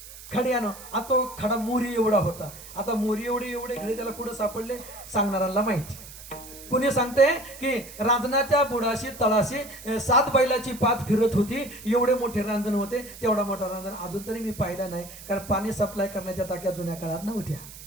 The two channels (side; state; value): right; noise; hiss, 16 dB below the sound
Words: खड्यानं. आता तो खडा मोरी एवढा होता. आता मोरी एवढे खडे त्याला कुठं सापडले सांगणाऱ्याला माहिती. कुणी सांगते की रांजणाच्या बुडाशी तळाशी 7 बैलाची पात फिरत होती. एवढे मोठे रांजण होते. तेवढा मोठा रांजण अजून तरी मी पाहिला नाही, कारण पाणी सप्लाय करण्याच्या टाक्या जुन्या काळात नव्हत्या.